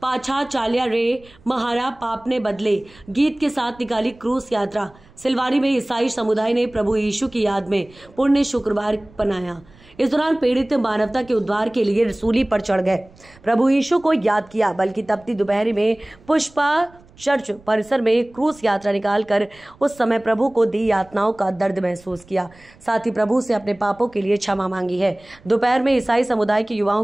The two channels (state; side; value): noise; right; rumble, 27 dB below the sound